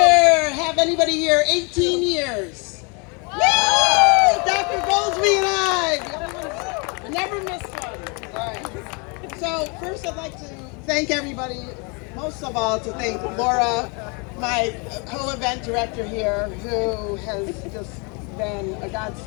anybody here 18 years? Woo! Dr. Goldsby and I never miss one. All right. So first I'd like to thank everybody, most of all to thank Laura, my co-event director here, who has just been a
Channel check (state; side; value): quieter; right; 32.7 dB